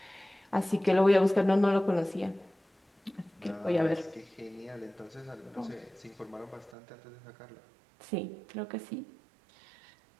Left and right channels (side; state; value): left; drops out; at 6.8 s